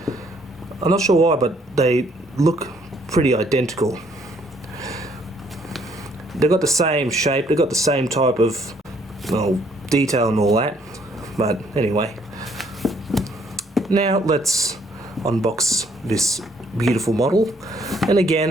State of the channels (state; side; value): normal; both; correlation 0.66